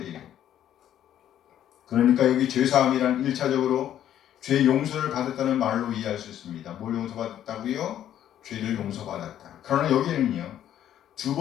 그러니까 여기 죄사함이란 1차적으로 죄 용서를 받았다는 말로 이해할 수 있습니다. 뭘 용서받았다고요? 죄를 용서받았다. 그러나 여기는요, 두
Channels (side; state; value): right; quieter; 11.0 dB